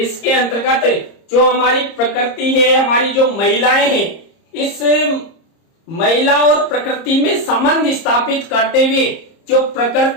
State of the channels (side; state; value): right; late; 30 ms